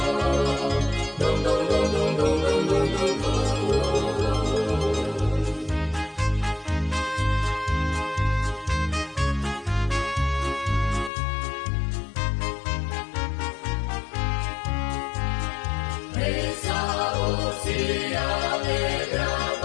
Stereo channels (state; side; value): drops out; right; at 11.1 s